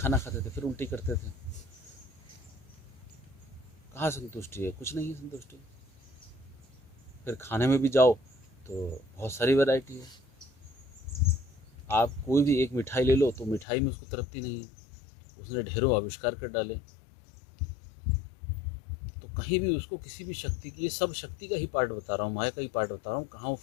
खाते थे फिर उल्टी करते थे। कहाँ संतुष्टि है? कुछ नहीं है संतुष्टि। फिर खाने में भी जाओ तो बहुत सारी वैरायटी है। आप कोई भी एक मिठाई ले लो तो मिठाई में उसको तृप्ति नहीं है, उसने ढेरों आविष्कार कर डाले। तो कहीं भी उसको किसी भी शक्ति की, ये सब शक्ति का ही पार्ट बता रहा हूँ, माया का ही पार्ट बता रहा हूँ, कहाँ वो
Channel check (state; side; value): drops out; right; at 13.7 s